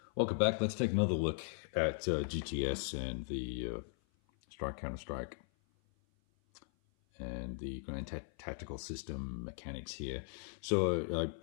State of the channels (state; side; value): silent; right; 52 dB below the other